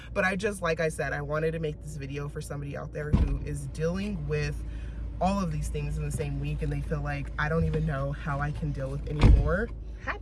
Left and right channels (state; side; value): identical; both; correlation 1.00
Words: But I just, like I said, I wanted to make this video for somebody out there who is dealing with all of these things in the same week. And they feel like, I don't even know how I can deal with anymore. Hi,